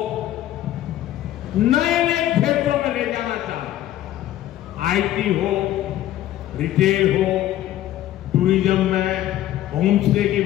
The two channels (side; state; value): right; quieter; 13.2 dB